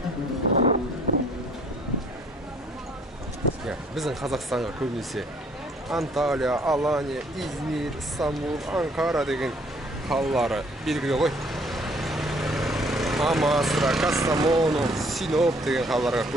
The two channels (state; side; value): normal; both; correlation 0.61